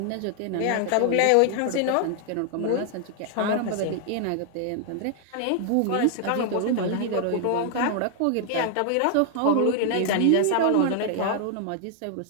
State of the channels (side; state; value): both; different; correlation 0.00